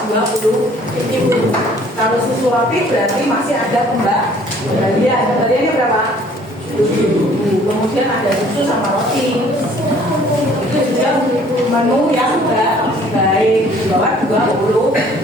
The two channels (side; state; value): both; normal; correlation 0.56